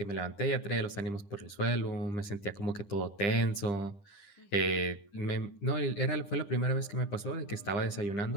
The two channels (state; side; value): late; right; 9.9 ms